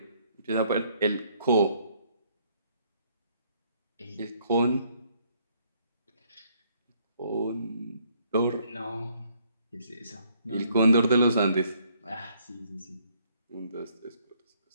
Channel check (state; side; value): inverted; both; correlation -0.67